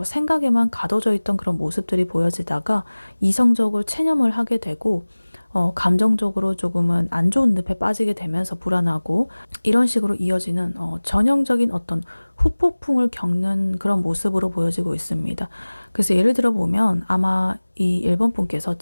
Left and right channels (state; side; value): inverted; both; correlation -1.00